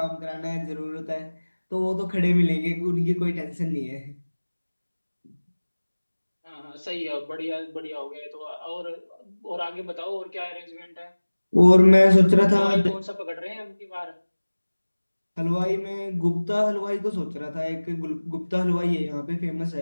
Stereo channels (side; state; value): both; inverted; correlation -1.00